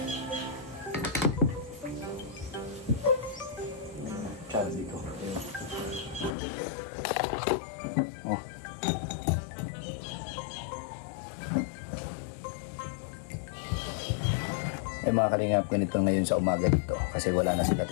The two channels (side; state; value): right; drops out; at 6.4 s